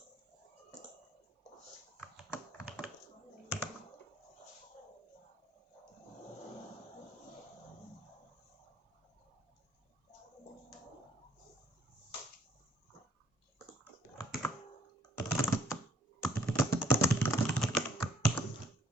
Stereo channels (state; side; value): normal; both; correlation 0.63